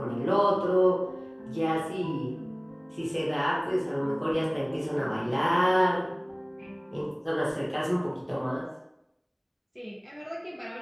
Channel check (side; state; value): both; identical; correlation 1.00